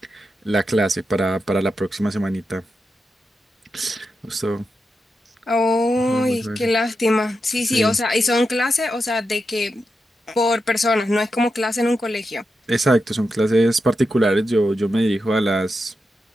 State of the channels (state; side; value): normal; both; correlation 0.87